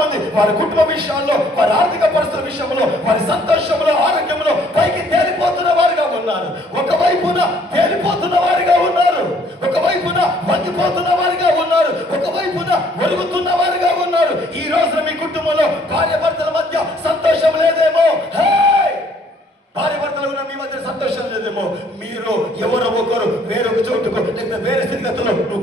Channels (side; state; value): both; normal; correlation 0.62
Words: వారి కుటుంబ విషయాల్లో, వారి ఆర్థిక పరిస్థితుల విషయంలో, వారి సంతోషంలో, ఆరోగ్యంలో పైకి తేలిపోతున్న వారుగా ఉన్నారు. ఒకవైపున తేలిపోతున్న వారిగా ఉన్నారు, ఒకవైపున వంగిపోతున్న వారిగా ఉన్నారు, ఒకవైపున ఒరుగుతున్న వారిగా ఉన్నారు. ఈ రోజున మీ కుటుంబంలో భార్య భర్తల మధ్య సంతోషం లేదేమో. భార్య భర్తలు ఉన్న మీ మధ్య సంతోషం లేదేమో. మీరు ఎవరో ఒకరు వేరొక చోటుకు లేదా వేరే స్థితిగతుల్లో